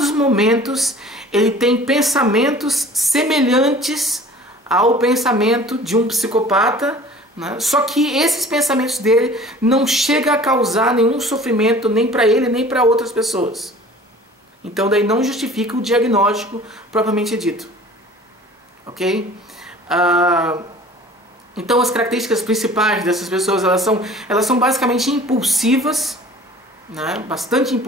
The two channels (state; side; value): normal; both; correlation 0.46